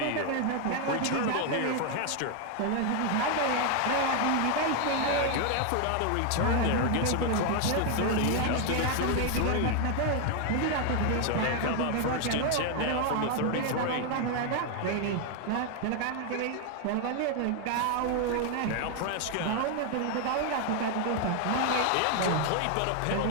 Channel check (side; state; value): both; different; correlation 0.00